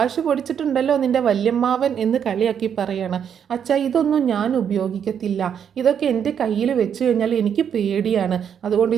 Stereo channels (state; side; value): quieter; left; 8.2 dB